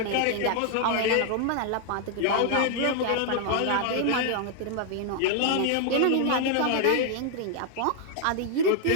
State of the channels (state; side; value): different; both; correlation 0.00